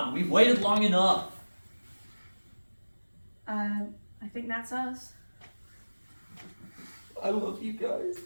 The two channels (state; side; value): inverted; both; correlation -1.00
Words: we've waited long enough. I think that's us. I love you guys.